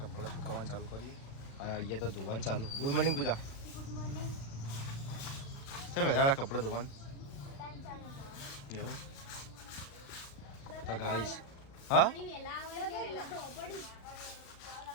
કપડાં સુકાવવાનું ચાલુ કરીએ અને અહીંયા તો ધોવાનું ચાલુ. ગુડ મોર્નિંગ પૂજા. તો વહેલા કપડાં ધોવાનું એવું. તો ગાઈસ હા,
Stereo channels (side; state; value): right; late; 36 ms